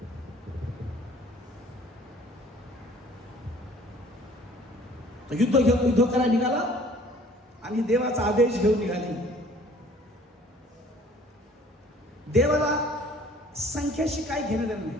तो युद्ध करायला निघाला आणि देवाचा आदेश घेऊन निघाले. देवाला संख्येशी काही घेणं देणं नाही.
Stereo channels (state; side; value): normal; both; correlation 0.53